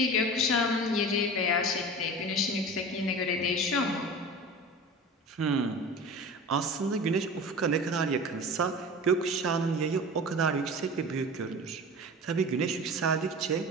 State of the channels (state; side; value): normal; both; correlation 0.34